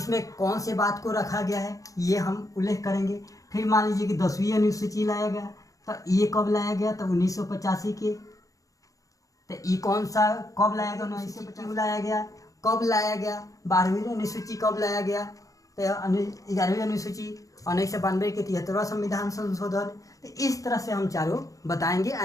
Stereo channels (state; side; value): late; right; 0.16 ms